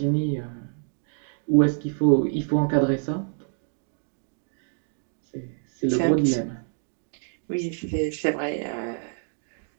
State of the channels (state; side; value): silent; left; 60 dB below the other